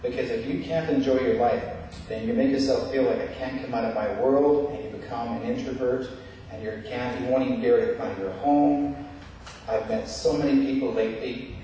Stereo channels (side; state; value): both; identical; correlation 1.00